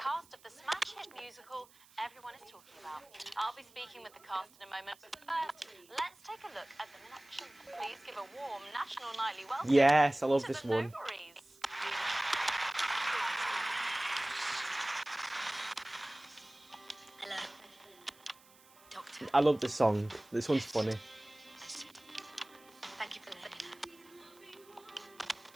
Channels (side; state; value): right; noise; hiss, 26 dB below the sound